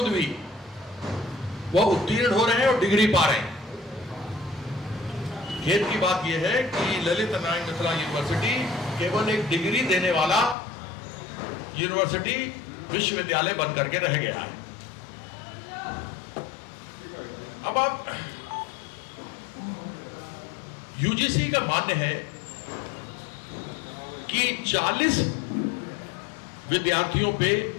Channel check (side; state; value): right; drops out; at 10.6 s